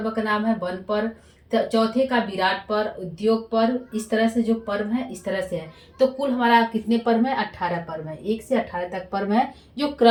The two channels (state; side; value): identical; both; correlation 1.00